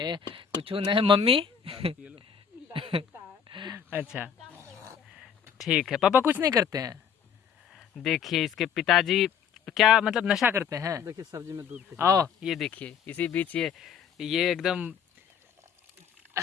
कुछ नहीं। मम्मी? अच्छा ठीक है, पापा कुछ नहीं करते हैं। देखिए इसके पिताजी क्या मतलब नशा करते हैं? देखिए सब्जी में दूध। आओ ये देखिए, इसी बीच ये एकदम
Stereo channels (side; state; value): right; quieter; 7.6 dB